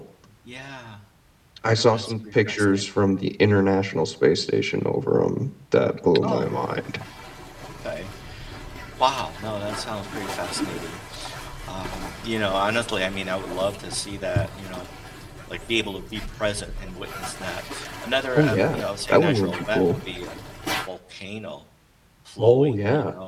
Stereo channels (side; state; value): both; identical; correlation 1.00